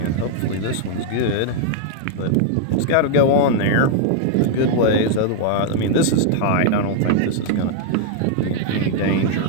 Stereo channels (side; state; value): both; different; correlation 0.00